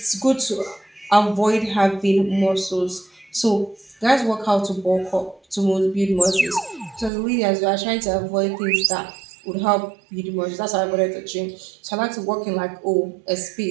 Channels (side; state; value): left; drops out; at 7.1 s